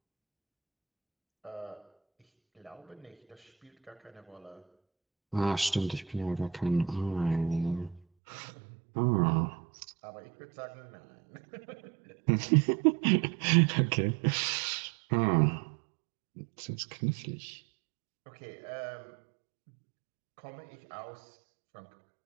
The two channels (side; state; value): left; drops out; at 8.0 s